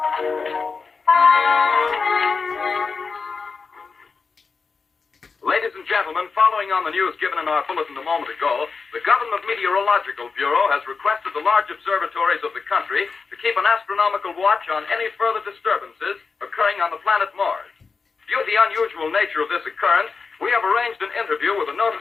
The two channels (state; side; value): quieter; right; 4.8 dB